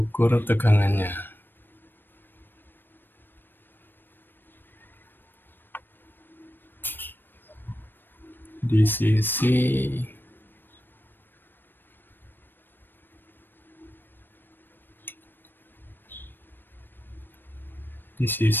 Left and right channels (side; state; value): right; late; 0.095 ms